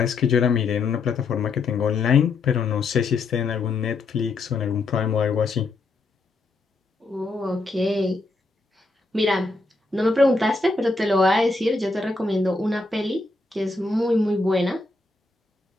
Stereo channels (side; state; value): right; quieter; 3.5 dB